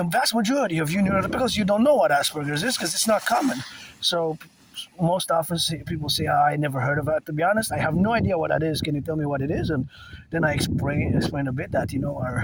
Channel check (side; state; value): both; identical; correlation 1.00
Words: vast majority of you neurotypicals, you don't know what Asperger's is because it's not common. So most often people say, I never heard of it. To be honest, I have no idea what that is. Can you tell me what it is? And then I explain a bit that,